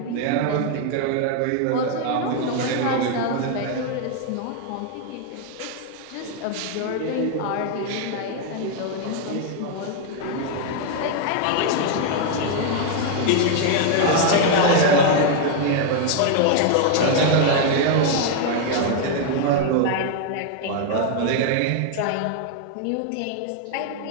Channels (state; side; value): different; both; correlation 0.00